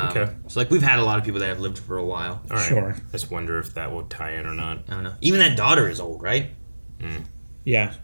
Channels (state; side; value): inverted; both; correlation -1.00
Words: Okay. So like we've had a lot of people that have lived for a while. All right. Sure. Just wonder if that will tie in or not. I don't know. Even that daughter is old, right? Yeah, Like